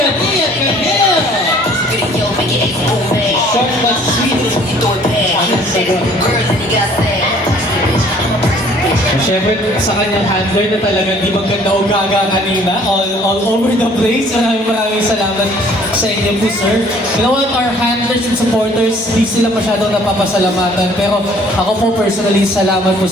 Ian Camille. Short but sweet. Siyempre, sa kanyang handler na talagang di maganda o gaga kanina, all over the place. Maraming salamat sa inyo po, sir. You know what, our handlers and supporters, di sila masyadong napapasalamatan. Pero ako po personally, salamat po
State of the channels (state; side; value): normal; both; correlation 0.56